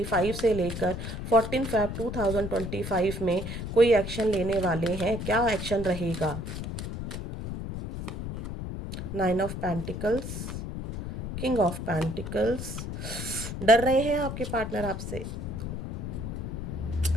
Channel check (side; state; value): left; noise; rumble, 6 dB below the sound